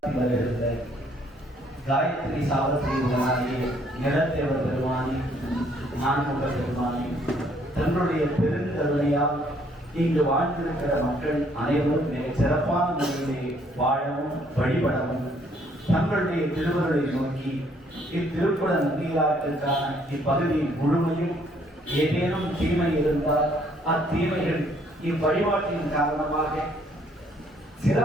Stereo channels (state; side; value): normal; both; correlation 0.65